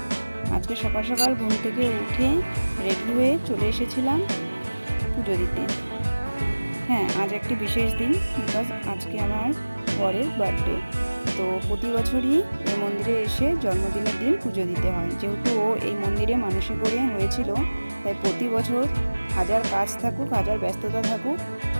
আজকে সকাল সকাল ঘুম থেকে উঠে রেডি হয়ে চলে এসেছিলাম পুজো দিতে। হ্যাঁ, আজ একটি বিশেষ দিন, বিকজ আজকে আমার বরের বার্থডে। তো প্রতি বছরই এই মন্দিরে এসে জন্মদিনের দিন পুজো দিতে হয়। যেহেতু ও এই মন্দিরে মানসিক করে হয়েছিল, তাই প্রতি বছর হাজার কাজ থাকুক, হাজার ব্যস্ততা থাকুক,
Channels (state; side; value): inverted; both; correlation -1.00